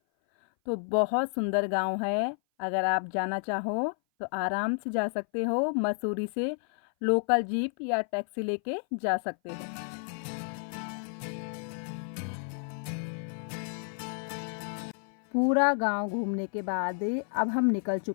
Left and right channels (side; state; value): right; silent; 56 dB below the other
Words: तो बहुत सुंदर गांव है। अगर आप जाना चाहो तो आराम से जा सकते हो। मसूरी से लोकल जीप या टैक्सी लेके जा सकते हो। पूरा गांव घूमने के बाद अब हम निकल